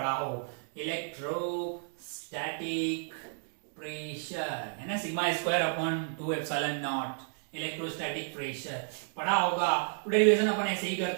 हो, electrostatic pressure है ना, sigma square upon 2 epsilon not, electrostatic pressure पढ़ा होगा। तो डेरिवेशन अपन ऐसे ही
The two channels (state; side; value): silent; left; digital silence